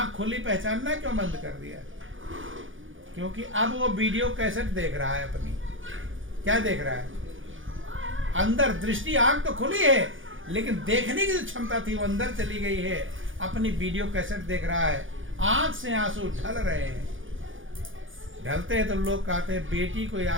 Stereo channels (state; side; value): late; left; 0.57 ms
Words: खुली, पहचानना क्यों बंद कर दिया? क्योंकि अब वो वीडियो कैसेट देख रहा है अपनी। क्या देख रहा है? अंदर दृष्टि, आंख तो खुली है, लेकिन देखने की जो क्षमता थी वो अंदर चली गई है। अपनी वीडियो कैसेट देख रहा है, आंख से आंसू ढल रहे हैं। ढलते हैं तो लोग कहते हैं बेटी को